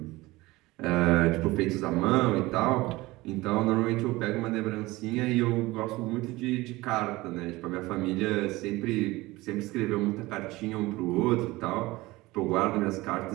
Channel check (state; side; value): quieter; left; 20.2 dB